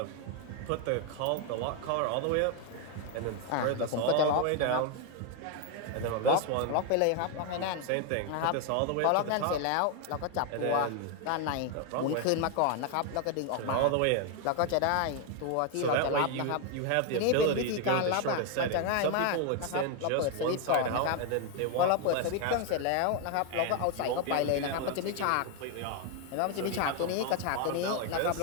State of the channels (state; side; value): different; both; correlation 0.01